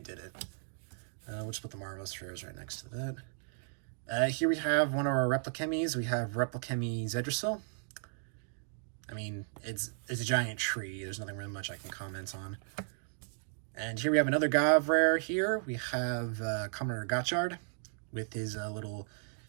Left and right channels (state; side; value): silent; left; digital silence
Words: did it. We'll just put the Marvelous Rares right next to that. Here we have one of our Replichemies. We have Replichemy Zedrasil. I mean, it's a giant tree. There's nothing really much I can comment on. And here we have another Gav rare here. We have Kamen Rider Gaッチャードwith his little